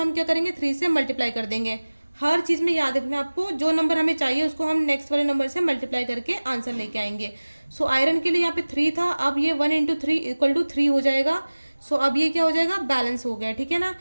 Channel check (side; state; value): both; inverted; correlation -1.00